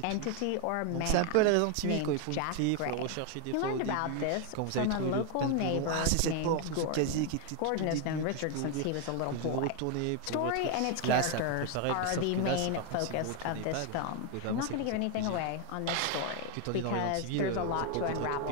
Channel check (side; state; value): both; different; correlation 0.00